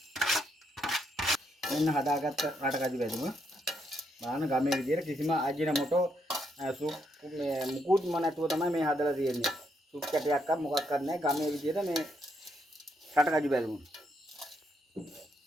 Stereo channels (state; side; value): normal; both; correlation 0.76